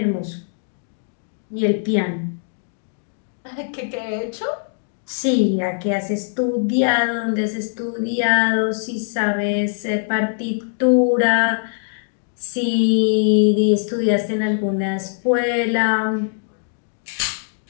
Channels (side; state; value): right; silent; digital silence